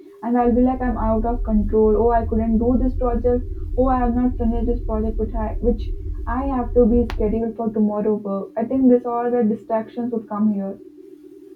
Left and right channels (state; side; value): identical; both; correlation 1.00